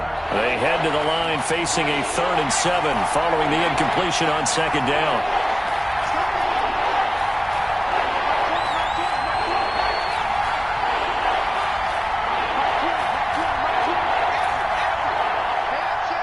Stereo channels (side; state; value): both; identical; correlation 1.00